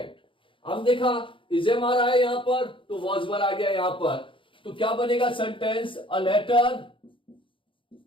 हम देखा इजेम आ रहा है यहां पर, तो वॉज वर आ गया यहां पर। तो क्या बनेगा sentence, a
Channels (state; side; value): late; right; 0.25 ms